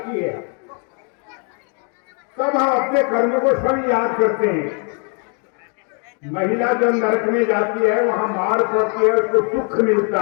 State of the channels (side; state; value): right; quieter; 38.8 dB